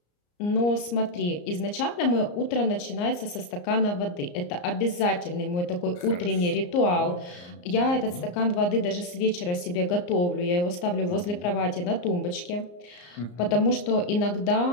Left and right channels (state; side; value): late; right; 34 ms